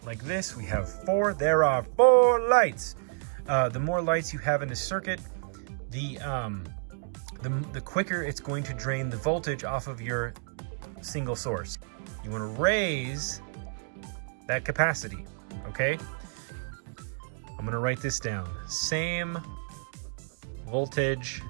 like this, we have 4, there are 4 lights. The more lights you have in a circuit, the quicker it's going to drain the voltage off of your single source. You want to raise that capacity, okay? I'm gonna write this down. Same voltage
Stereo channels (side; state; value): left; silent; digital silence